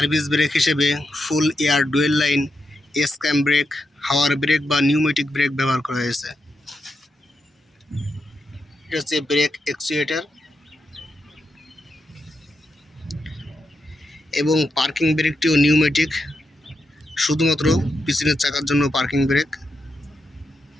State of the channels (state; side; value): normal; both; correlation 0.85